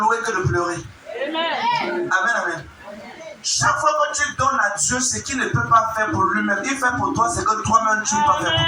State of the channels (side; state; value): both; identical; correlation 1.00